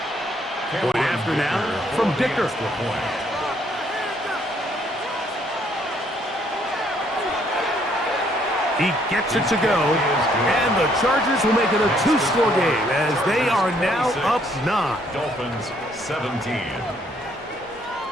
Point after now from Dicker. He gets it to go, and the Chargers will make it a two-score game as they are now up 9. Dolphins 17.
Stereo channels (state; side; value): normal; both; correlation 0.67